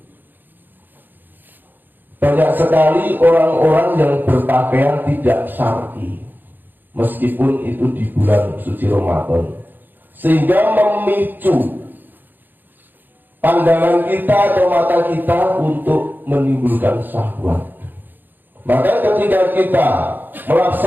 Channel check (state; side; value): late; left; 0.090 ms